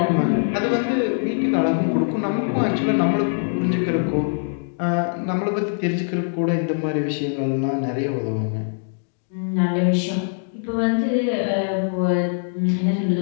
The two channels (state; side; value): silent; right; digital silence